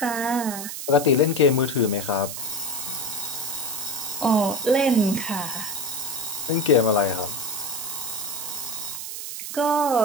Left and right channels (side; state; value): right; noise; hiss, 7 dB below the sound